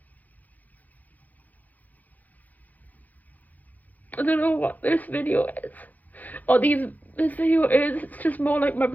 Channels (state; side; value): late; right; 0.081 ms